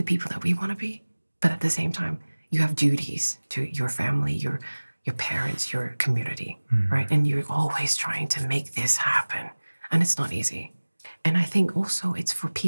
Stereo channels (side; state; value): both; inverted; correlation -1.00